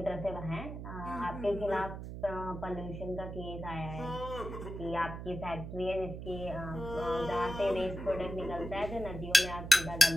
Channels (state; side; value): noise; right; hum, 8 dB below the sound